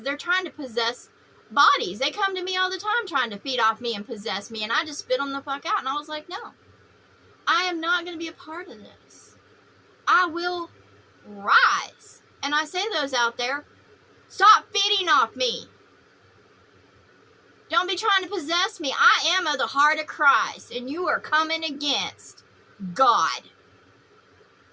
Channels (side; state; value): both; identical; correlation 1.00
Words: they're trying to possess bodies. They come to me all the time trying to feed off me and possess me, and I just spit them the fuck out. And I was like, no. I am not going to be a part of this. I will rise. And I say to those out there, stop feeding off me. Don't be trying to possess me. I am of the heart of Christ, and you are coming against God.